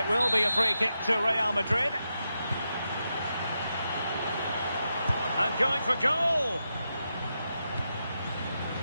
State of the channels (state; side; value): inverted; both; correlation -0.86